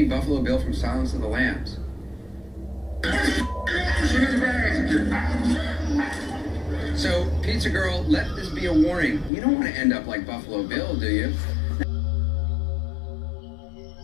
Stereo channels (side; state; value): right; drops out; at 9.3 s